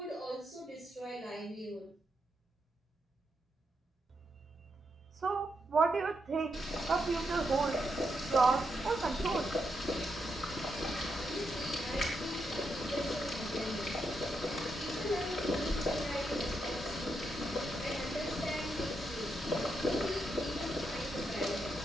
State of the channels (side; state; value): both; normal; correlation 0.82